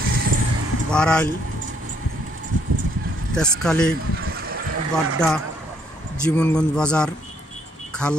বারাইল, তেজখালী, বাড্ডা, জীবনগঞ্জ বাজার,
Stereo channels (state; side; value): normal; both; correlation 0.68